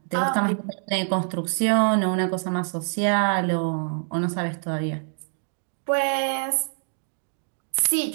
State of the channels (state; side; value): silent; left; digital silence